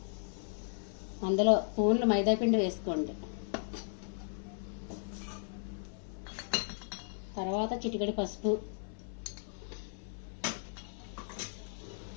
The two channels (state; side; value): silent; right; 54 dB below the other